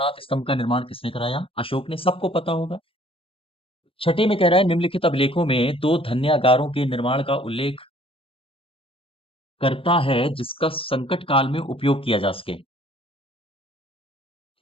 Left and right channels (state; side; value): late; right; 0.26 ms